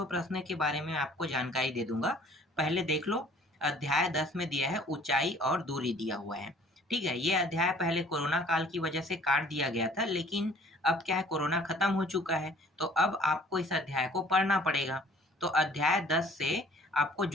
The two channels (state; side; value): normal; both; correlation 0.54